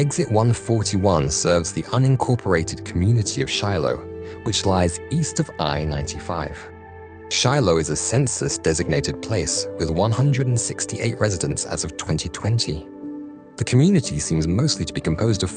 141 serves the unincorporated community of Shiloh, which lies east of I-95. Shiloh is a census-designated place with 168 residents as of 2020. The community seems mostly to be composed of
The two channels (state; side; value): identical; both; correlation 1.00